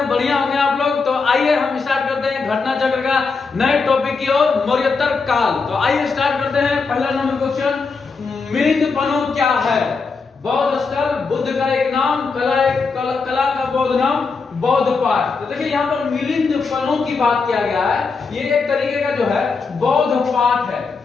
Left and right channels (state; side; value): quieter; right; 4.6 dB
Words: बढ़िया होंगे आप लोग। तो आइए हम स्टार्ट करते हैं घटना चक्र का नए टॉपिक की ओर, मौर्योत्तर काल। तो आइए स्टार्ट करते हैं। पहला नंबर क्वेश्चन, मिलिंद पनो क्या है? बौद्ध स्थल, बुद्ध का एक नाम, कला का बौद्ध नाम, बौद्ध पाठ। तो देखिए यहाँ पर मिलिंद पनो की बात किया गया है। ये एक तरीके का जो है बौद्ध पाठ है।